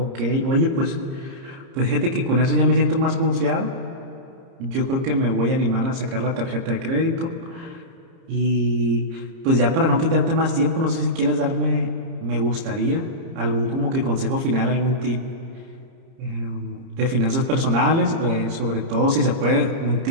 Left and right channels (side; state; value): left; late; 30 ms